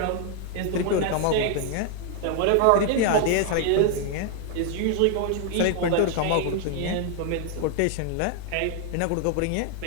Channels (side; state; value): both; different; correlation 0.00